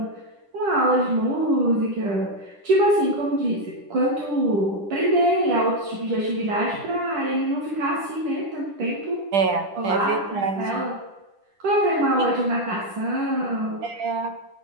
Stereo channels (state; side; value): late; left; 10 ms